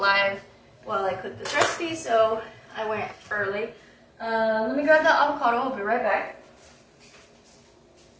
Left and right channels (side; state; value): both; identical; correlation 1.00